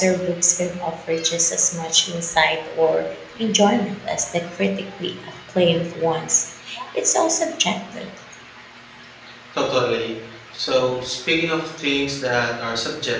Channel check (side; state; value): both; identical; correlation 1.00